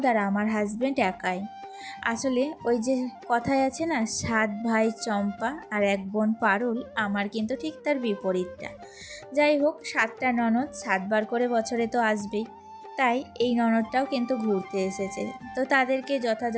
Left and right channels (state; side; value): identical; both; correlation 1.00